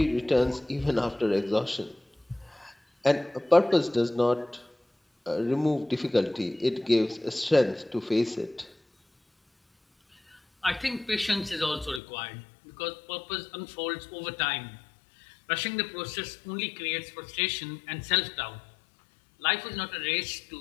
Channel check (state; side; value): drops out; right; at 12.0 s